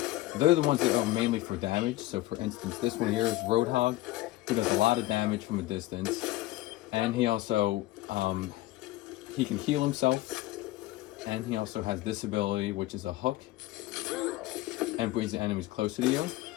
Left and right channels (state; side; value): quieter; right; 17.0 dB